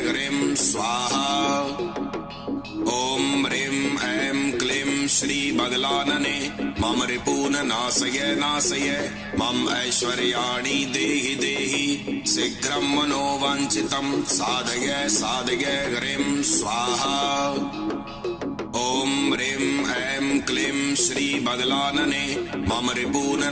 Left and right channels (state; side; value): identical; both; correlation 1.00